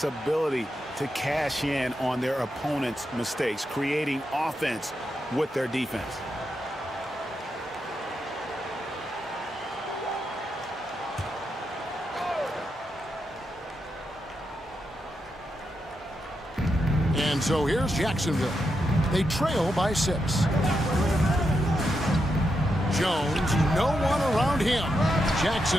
ability to cash in on their opponent's mistakes, creating offense with their defense. And so here's Jacksonville. They trail by 6. Jones, no one around him.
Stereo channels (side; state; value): both; normal; correlation 0.84